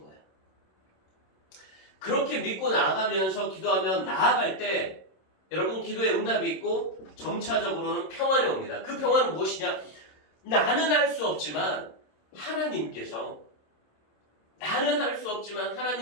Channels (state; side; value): late; right; 26 ms